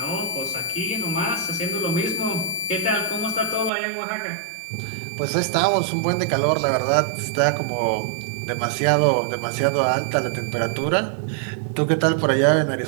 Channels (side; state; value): left; drops out; at 3.7 s